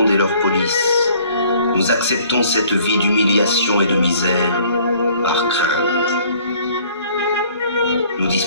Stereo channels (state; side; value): inverted; both; correlation -0.57